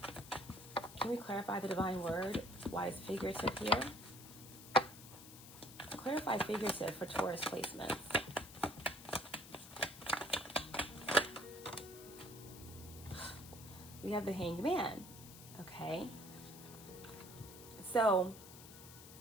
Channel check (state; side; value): noise; left; hiss, 16 dB below the sound